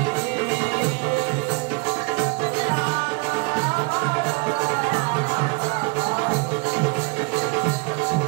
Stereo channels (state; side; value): quieter; left; 27.7 dB